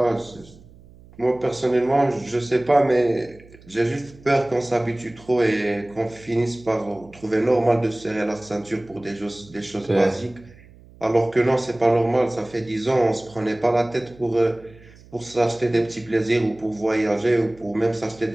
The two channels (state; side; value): noise; right; hum, 24 dB below the sound